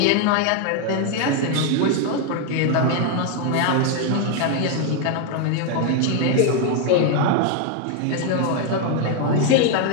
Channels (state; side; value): different; both; correlation 0.01